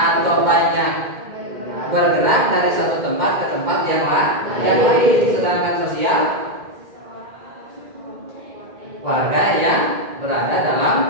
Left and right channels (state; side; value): late; left; 2.1 ms